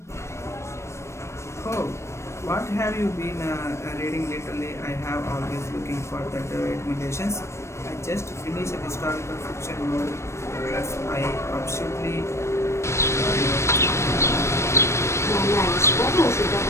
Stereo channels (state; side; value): late; right; 0.13 ms